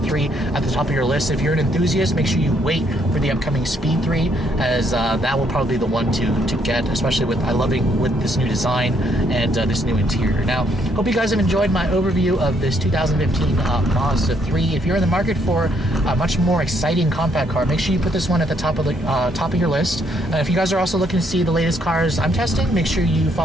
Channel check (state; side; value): normal; both; correlation 0.71